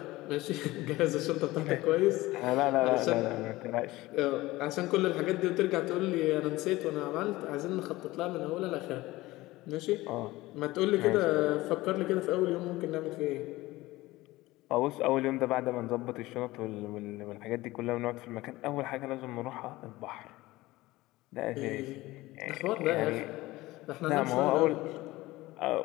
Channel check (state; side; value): quieter; right; 18.8 dB